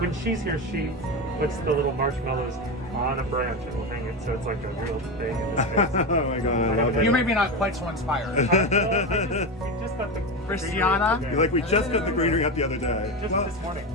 she's here, she puts the little marshmallows on a branch and will hang it, so it's like a real thing in the space. Oh my god, I love You it. may be not quite so inspired. We just got the Christiana? greenery You're like, we just got the greenery up the other day. Just this morning.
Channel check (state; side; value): normal; both; correlation 0.17